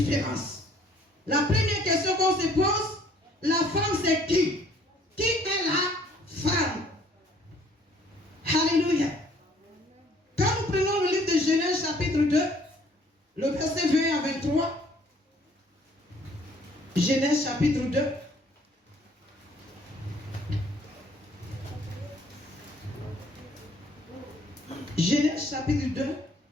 La première question qu'on se pose, la femme c'est qui? Qui est la femme? Alléluia. Quand nous prenons le livre de Genèse chapitre 2, le verset 20 à 23, Genèse chapitre 2, Genèse chapitre 2,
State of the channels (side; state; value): both; normal; correlation 0.59